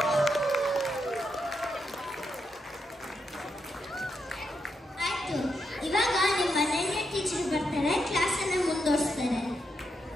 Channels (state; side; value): normal; both; correlation 0.82